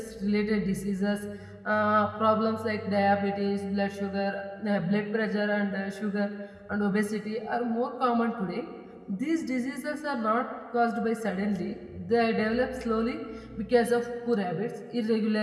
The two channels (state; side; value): identical; both; correlation 1.00